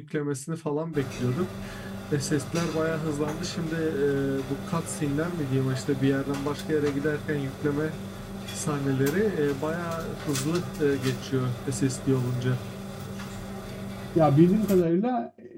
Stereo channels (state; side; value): identical; both; correlation 1.00